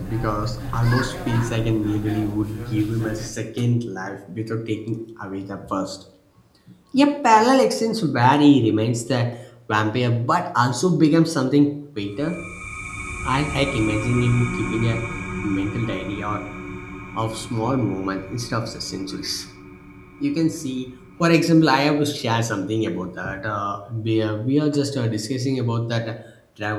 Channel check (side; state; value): both; identical; correlation 1.00